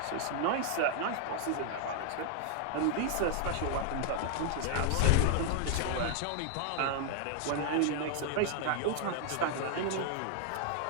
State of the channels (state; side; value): different; both; correlation 0.00